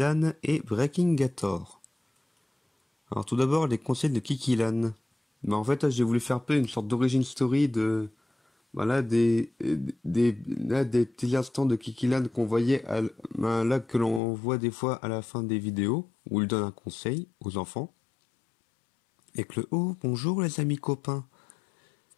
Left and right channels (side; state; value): right; drops out; at 14.2 s